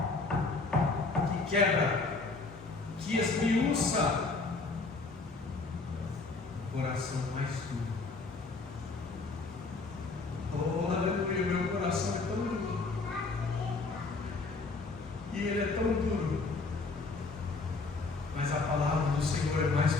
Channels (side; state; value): right; quieter; 3.8 dB